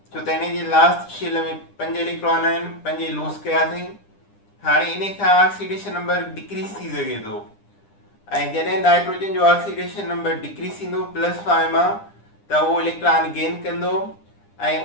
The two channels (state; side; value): late; right; 9.9 ms